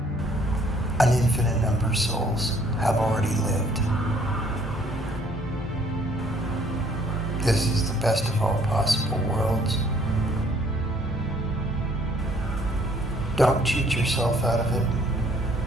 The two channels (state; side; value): normal; both; correlation 0.61